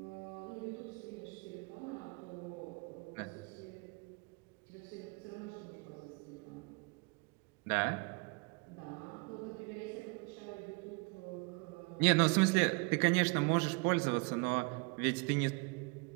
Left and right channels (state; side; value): quieter; left; 29.8 dB